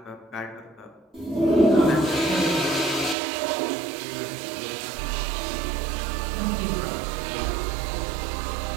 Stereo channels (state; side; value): drops out; left; at 3.2 s